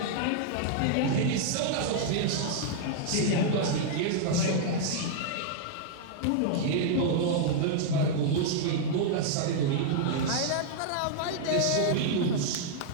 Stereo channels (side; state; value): both; different; correlation -0.01